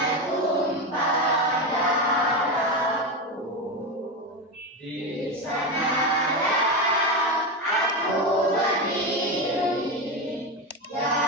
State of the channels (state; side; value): normal; both; correlation 0.16